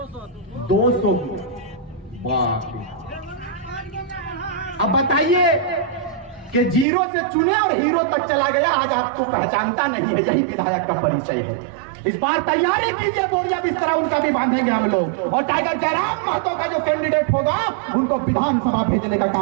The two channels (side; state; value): left; drops out; at 6.9 s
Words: 200 गुना। अब बताइए कि जीरो से चुने और हीरो तक चला गया, आज आपको पहचानता नहीं है, यही विधायक का परिचय है। इस बार तैयारी कीजिए, बोरिया बिस्तरा उनका भी बांधेंगे हम लोग, और टाइगर जयराम महतो का जो कैंडिडेट होगा उनको विधानसभा भेजने का